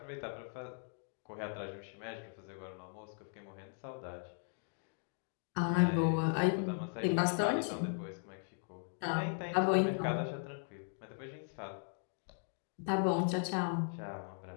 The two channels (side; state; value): right; silent; 52 dB below the other